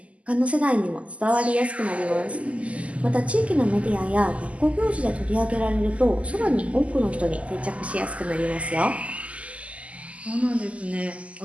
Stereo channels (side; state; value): left; late; 0.065 ms